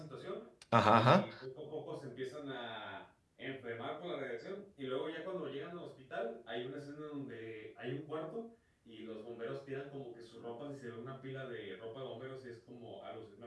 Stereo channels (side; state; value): both; identical; correlation 1.00